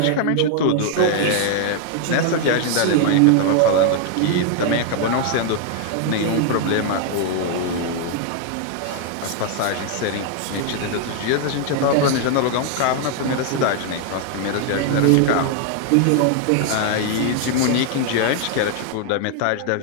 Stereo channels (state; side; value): different; both; correlation 0.00